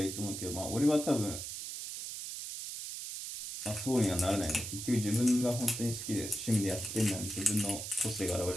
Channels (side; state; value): right; noise; hiss, 7 dB below the sound